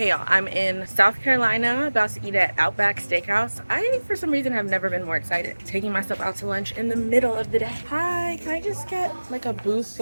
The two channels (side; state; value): both; inverted; correlation -1.00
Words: y'all, I'm in South Carolina, about to eat at Outback Steakhouse. I, for some reason, have never been more excited. Taking myself out to lunch in the middle of the day. Hi, can I just get like a booth